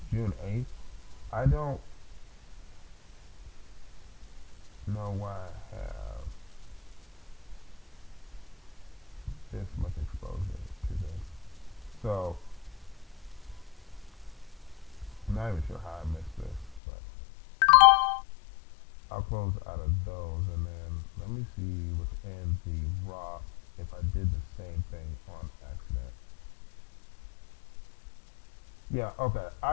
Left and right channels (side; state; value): right; drops out; at 16.8 s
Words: June 8th. I don't know why I have this much exposure to this. So, I'm not even sure how I missed this, but I'll close out of those and then let me see within the Roth if I did the same thing on accident. Yeah, okay.